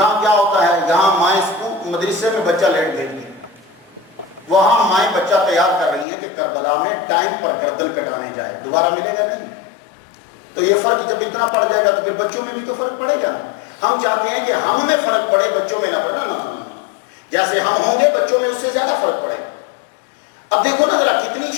کیا ہوتا ہے، یہاں مائیں مدرسے میں بچہ لیٹ بھیجتی ہیں، وہاں مائیں بچہ تیار کر رہی ہیں کہ کربلا میں ٹائم پر گردن کٹانے جائے، دوبارہ ملے گا نہیں۔ تو یہ فرق جب اتنا پڑ جائے گا تو پھر بچوں میں بھی تو فرق پڑے گا۔ ہم چاہتے ہیں کہ ہم میں فرق پڑے، بچوں میں نہ پڑے، نہ جیسے ہم ہوں گے بچوں میں اس سے زیادہ فرق پڑے گا۔ اب دیکھو نا ذرا کتنی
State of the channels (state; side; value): drops out; right; at 6.1 s